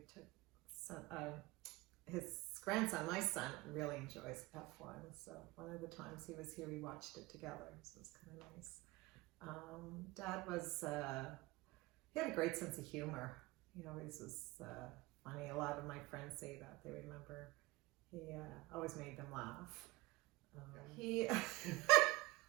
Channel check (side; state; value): left; quieter; 20.6 dB